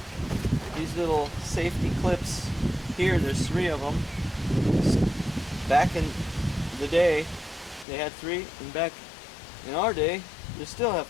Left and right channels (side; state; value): right; drops out; at 7.9 s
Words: These little safety clips here, there's 3 of them. Back in the day they had 3, and back in our day they still have